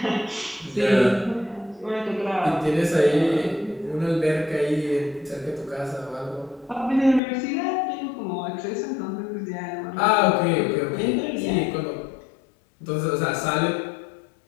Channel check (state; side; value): drops out; right; at 7.2 s